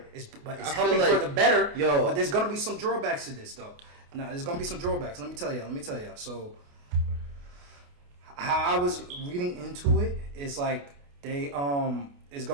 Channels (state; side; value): late; left; 28 ms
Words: It's helping for the better. But there's gonna be some drawbacks to this though. Now there's gonna be some drawbacks. Let me tell you. So how I was reading into it is like they it's